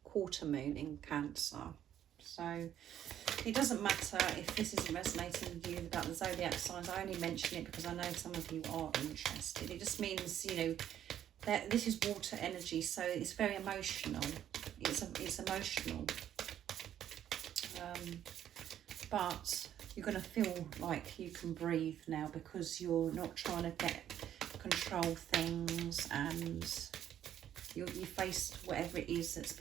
quarter moon in Cancer. So it doesn't matter if this isn't resonating with you about the zodiac signs. I only mention it because I know some of you are interested. It just means, you know, that this is water energy, so it's very emotional. It's emotional. But you're going to feel like you can breathe now because you're not trying to control things, and you faced whatever it is that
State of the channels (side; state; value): left; quieter; 10.7 dB